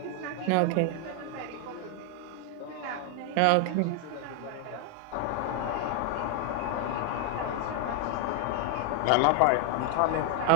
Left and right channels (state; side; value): different; both; correlation 0.01